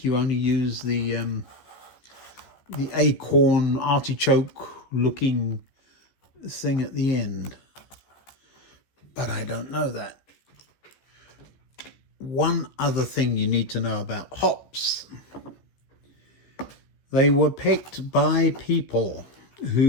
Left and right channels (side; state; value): right; late; 15 ms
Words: you only use the acorn artichoke looking thing at the end. But I don't know that. One other thing you need to know about hops. They were picked by people